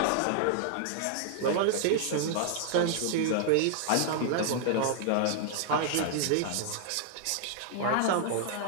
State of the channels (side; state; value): both; different; correlation 0.00